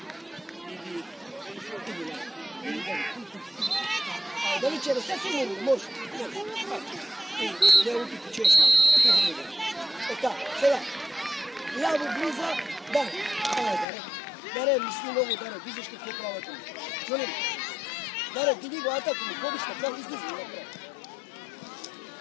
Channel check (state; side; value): drops out; right; at 13.9 s